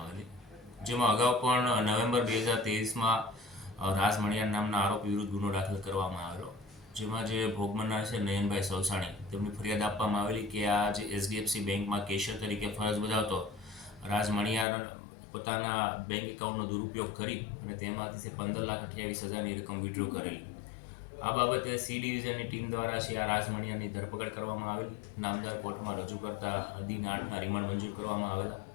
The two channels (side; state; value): right; drops out; at 14.7 s